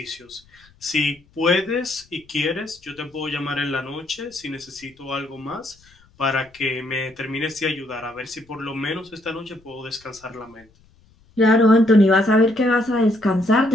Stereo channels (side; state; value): left; noise; rumble, 30 dB below the sound